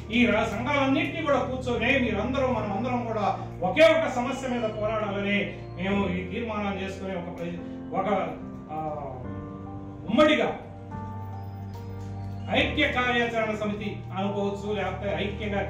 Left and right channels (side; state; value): both; identical; correlation 1.00